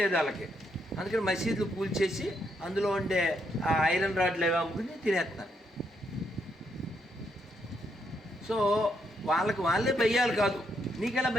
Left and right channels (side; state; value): both; normal; correlation 0.77